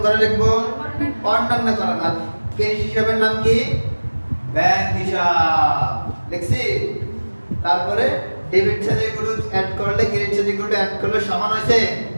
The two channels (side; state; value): both; inverted; correlation -1.00